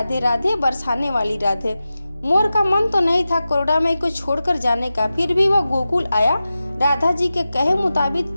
राधे, बरसाने वाली राधे। मोर का मन तो नहीं था करुणामय को छोड़कर जाने का, फिर भी वह गोकुल आया। राधा जी के कहे मुताबिक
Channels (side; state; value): both; inverted; correlation -0.94